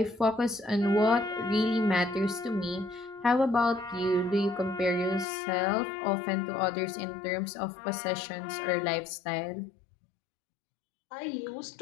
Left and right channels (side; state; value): right; drops out; at 5.2 s